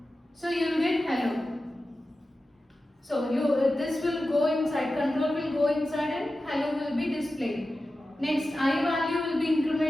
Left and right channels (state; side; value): normal; both; correlation 0.93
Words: so you will get hello. So this will go inside, control will go inside and hello will be displayed. Next, I value will be